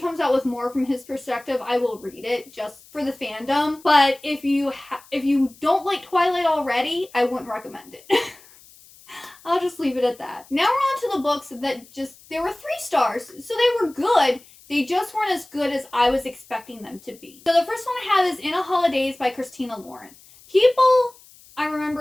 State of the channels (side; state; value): left; noise; hiss, 24 dB below the sound